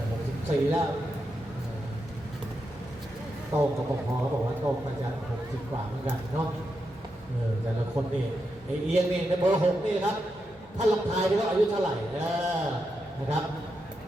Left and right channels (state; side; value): normal; both; correlation 0.85